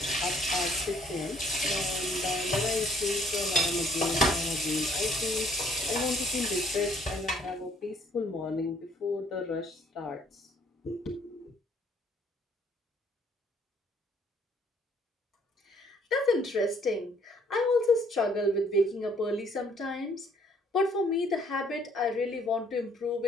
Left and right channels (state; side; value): normal; both; correlation 0.63